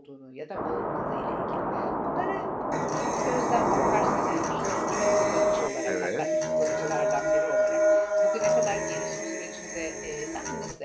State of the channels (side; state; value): both; identical; correlation 1.00